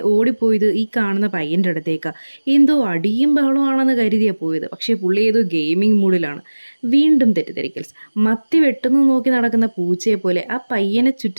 ഓടിപ്പോയത് ഈ കാണുന്ന പയ്യൻ്റെ അടുത്തേക്ക്. എന്തോ അടിയും ബഹളമാണെന്ന് കരുതിയാണ് പോയത്. പക്ഷേ പുള്ളി ഏതോ ഗെയിമിംഗ് മൂഡിലാണ്. വീണ്ടും തെറ്റിദ്ധരിക്കൽസ്. മത്തി വെട്ടുന്നു നോക്കി നടക്കുന്ന പൂച്ചയെ പോലെ ആ പയ്യനെ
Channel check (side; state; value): both; inverted; correlation -1.00